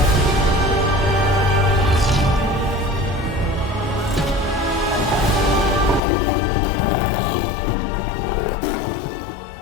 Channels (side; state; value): right; drops out; at 6.0 s